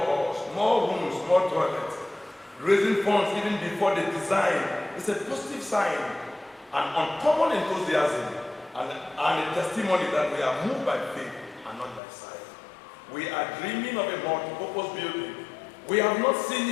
more rooms, more toilets. Raising funds even before the design is a positive sign, an uncommon enthusiasm, and a testimony that we are moved by faith and not by sight. We are dreaming of a multi-purpose building. We have not seen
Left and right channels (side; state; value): right; drops out; at 12.0 s